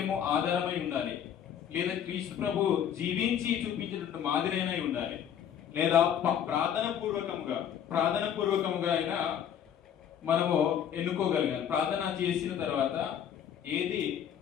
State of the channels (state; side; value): quieter; right; 9.2 dB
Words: ఆధారమై ఉండాలి, లేదా క్రీస్తు ప్రభు జీవించి చూపించినట్టు మాదిరైనై ఉండాలి, లేదా ప్రార్థన పూర్వకముగా అయినా మనము ఎన్నుకోగలిగాలి. ప్రార్థన చేసిన తర్వాత ఏది